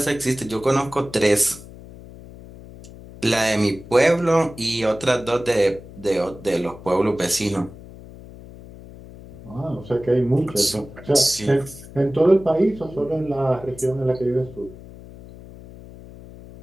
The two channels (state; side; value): noise; left; hum, 17 dB below the sound